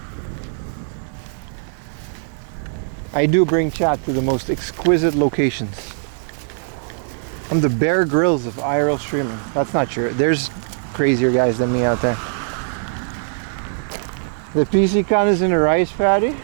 I do bring chat to the most exquisite locations. I'm the Bear Grylls of IRL streaming. That's not true. There's crazier guys than me out there. The PC con is in a rice paddy?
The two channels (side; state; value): left; silent; digital silence